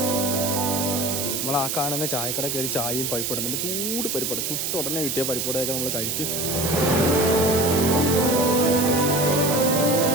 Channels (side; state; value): right; noise; hiss, 1 dB below the sound